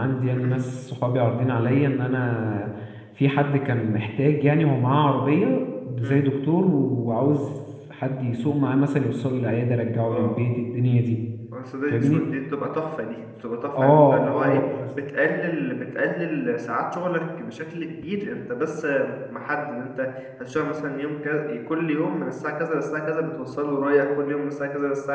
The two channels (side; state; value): both; identical; correlation 1.00